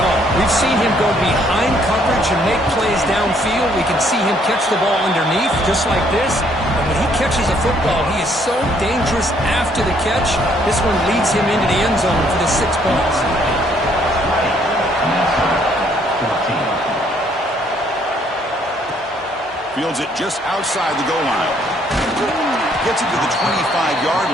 all. We've seen him go behind coverage and make plays downfield. We can see him catch the ball underneath, just like this. And when he catches a football, he is so dangerous after the catch. This one leads him into the end zone for the 6 points. Fields it just outside the goal line. Gets it to the 25-yard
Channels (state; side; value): normal; both; correlation 0.66